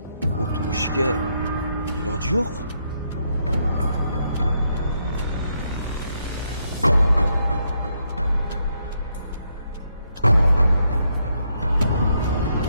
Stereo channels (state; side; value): inverted; both; correlation -0.77